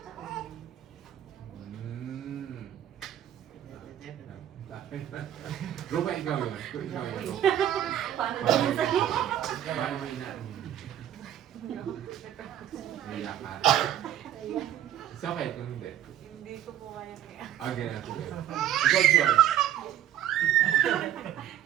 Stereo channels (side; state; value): left; quieter; 11.5 dB